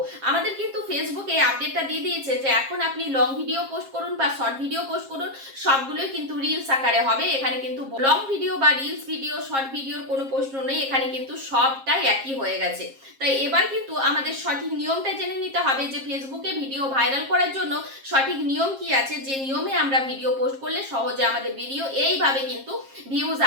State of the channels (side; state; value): left; late; 7.4 ms